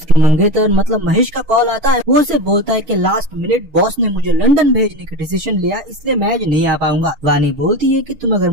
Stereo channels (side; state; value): left; late; 6.5 ms